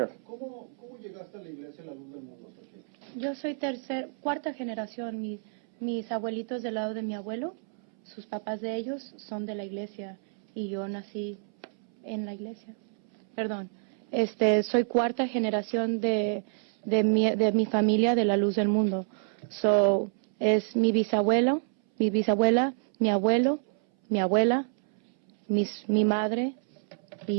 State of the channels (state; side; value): silent; left; 59 dB below the other